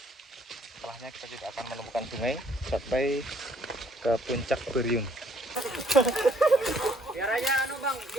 Setelahnya kita tidak akan menemukan sungai sampai ke puncak Beriun. Dia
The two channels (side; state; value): both; normal; correlation 0.63